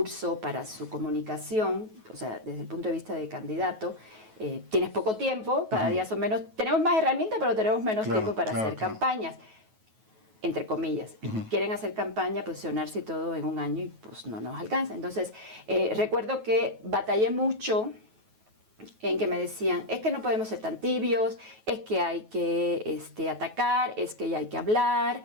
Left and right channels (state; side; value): late; left; 9.3 ms